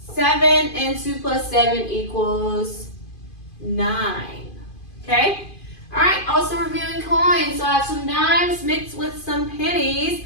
7, and 2 plus 7 equals 9. Okay? Alright, also reviewing coins. So I have some dimes mixed with some pennies.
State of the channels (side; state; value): right; late; 2.5 ms